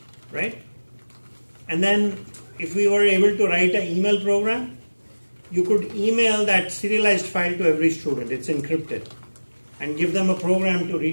right? And then if we were able to write an email program, you could email that serialized file to every student. It's encrypted. And give them a program to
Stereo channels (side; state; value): both; inverted; correlation -1.00